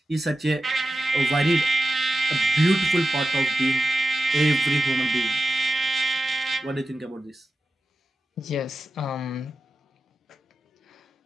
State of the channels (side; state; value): both; normal; correlation 0.92